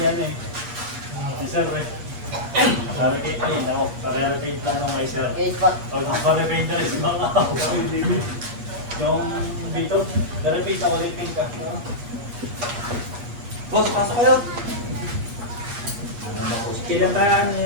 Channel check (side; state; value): left; late; 8.4 ms